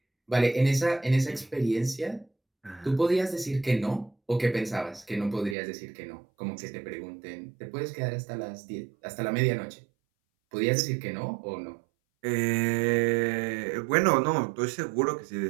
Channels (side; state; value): left; drops out; at 5.6 s